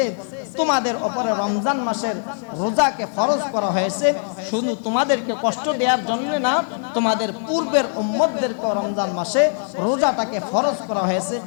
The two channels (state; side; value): silent; right; digital silence